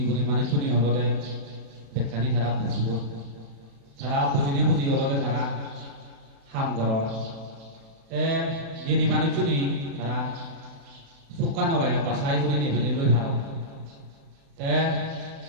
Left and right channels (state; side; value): late; left; 36 ms